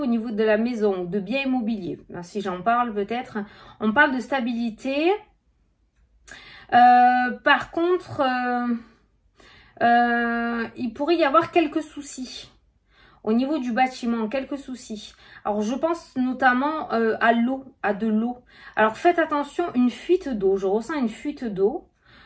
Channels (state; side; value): identical; both; correlation 1.00